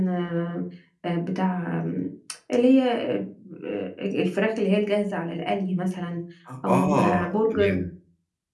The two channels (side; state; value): both; identical; correlation 1.00